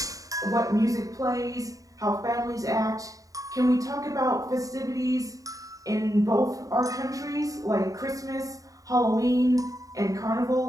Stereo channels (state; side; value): late; left; 0.16 ms